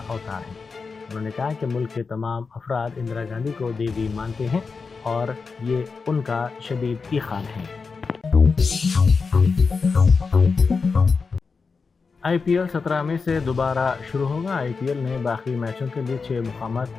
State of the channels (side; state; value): right; quieter; 4.8 dB